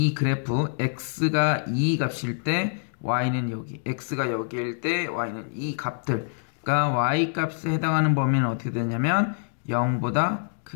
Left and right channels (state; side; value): silent; right; digital silence